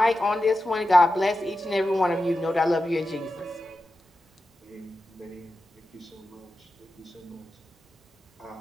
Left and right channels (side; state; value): both; normal; correlation 0.92